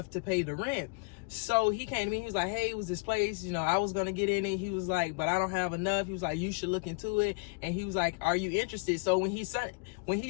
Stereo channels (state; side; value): quieter; right; 31.6 dB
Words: to pay the rent. So he came to me, he was like, hey, it was this place, I was gonna get in it. He was like, but I don't have enough. He was like, you should look into it. And he was like, are you interested? So when he sent